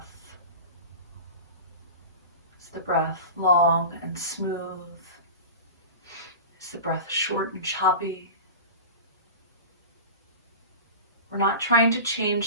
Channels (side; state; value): both; inverted; correlation -0.32